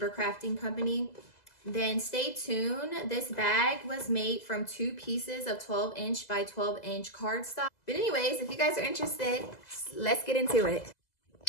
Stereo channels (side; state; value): right; late; 2.0 ms